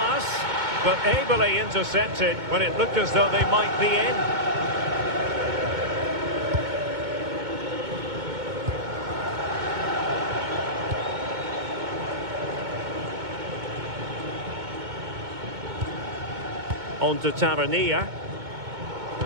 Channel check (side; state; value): left; late; 2.2 ms